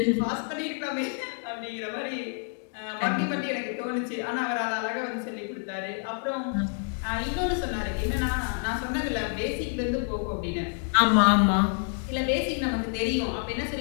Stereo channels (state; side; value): silent; right; 56 dB below the other